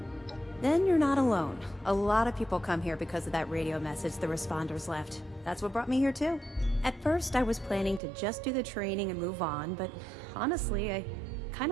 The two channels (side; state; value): left; drops out; at 8.0 s